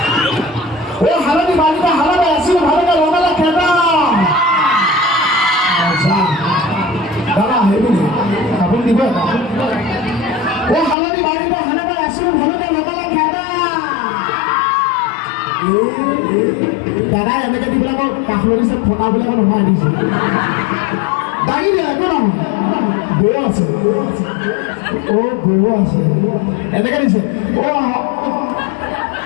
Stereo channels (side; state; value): right; drops out; at 11.0 s